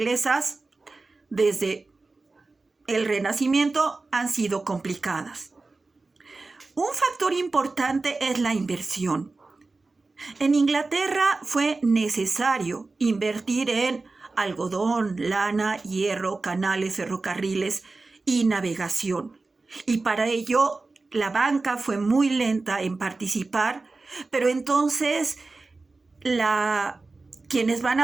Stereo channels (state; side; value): quieter; left; 3.6 dB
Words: desde el Renacimiento, han sido complicadas. Un factor importante es la inversión. En Inglaterra fue necesario invertir en algodón, lana, hierro, canales, ferrocarriles y navegación. Y para ello la banca fue muy lenta en participar, pero entonces quienes van